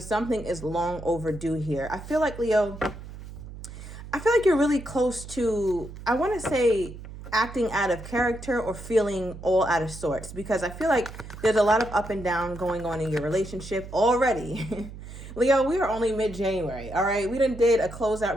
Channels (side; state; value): right; noise; hum, 13 dB below the sound